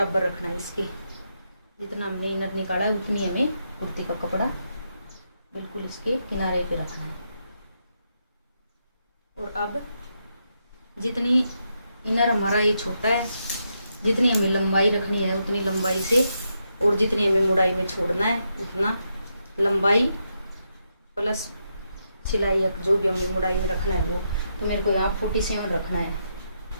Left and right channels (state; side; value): inverted; both; correlation -0.82